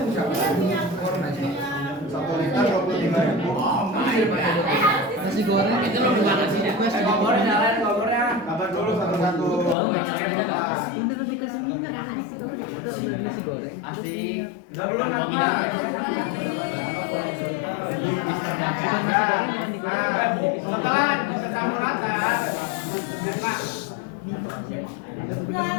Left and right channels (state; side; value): drops out; right; at 9.8 s